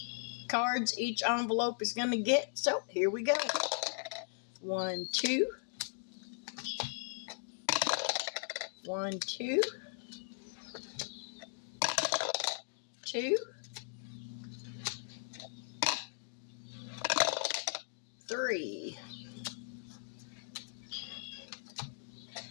cards each envelope is going to get. So here we go. 1, 2. 1, 2. 2. 3.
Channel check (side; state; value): right; silent; digital silence